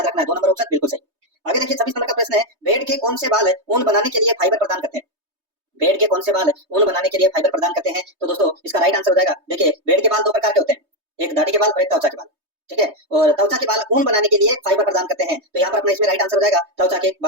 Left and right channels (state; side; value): late; left; 3.2 ms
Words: रखना है। 2 नंबर ऑप्शन बिल्कुल सही। आगे देखिए 26 नंबर का प्रश्न है, भेड़ के कौन से बाल ऊन बनाने के लिए फाइबर प्रदान करते हैं? भेड़ के कौन से बाल ऊन बनाने के लिए फाइबर प्रदान करते हैं? तो दोस्तों इसका राइट आंसर हो जाएगा, देखिए भेड़ के बाल दो प्रकार के होते हैं, एक दाढ़ी के बाल और एक त्वचा के बाल, ठीक है। और त्वचा के बाल ऊन बनाने के लिए फाइबर प्रदान करते हैं, तो यहाँ पर अपना इसमें राइट आंसर हो जाएगा त्वचा के